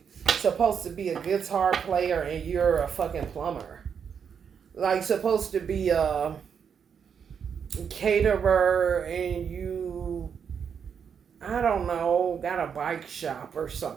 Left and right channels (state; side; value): quieter; left; 7.1 dB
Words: supposed to be a guitar player and you're a fucking plumber. Like supposed to be a caterer and you, I don't know, got a bike shop or